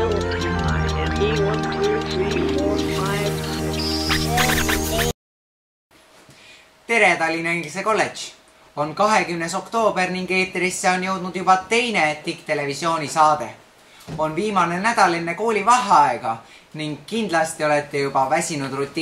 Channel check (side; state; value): both; identical; correlation 1.00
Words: Tere Tallinna Inglise Kolledž! On 20. oktoober ning eetrisse on jõudnud juba teine TIK-televisiooni saade. On viimane nädal enne kooli vaheaega ning kindlasti olete juba väsinud